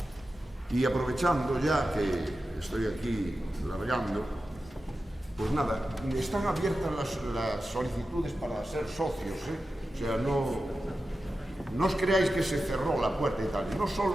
Y aprovechando ya que estoy aquí largando, pues nada, están abiertas las solicitudes para ser socios, O sea, no os creáis que se cerró la puerta y tal. No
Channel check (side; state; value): both; normal; correlation 0.92